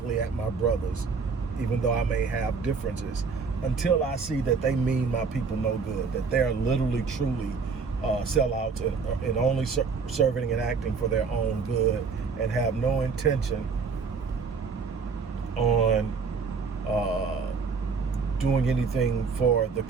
at my brothers, even though I may have differences, until I see that they mean my people no good, that they're literally, truly sellouts and only serving and acting for their own good, and have no intention on doing anything for the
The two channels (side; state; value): left; quieter; 5.1 dB